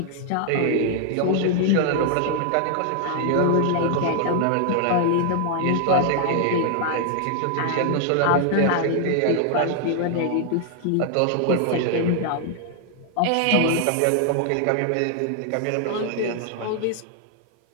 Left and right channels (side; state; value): both; different; correlation 0.00